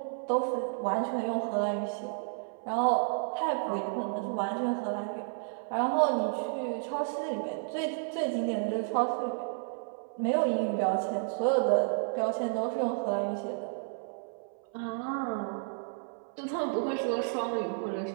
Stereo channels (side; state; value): left; silent; 57 dB below the other